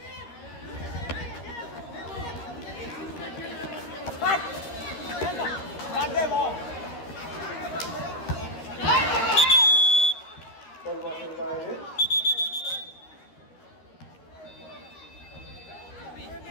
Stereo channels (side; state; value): right; late; 13 ms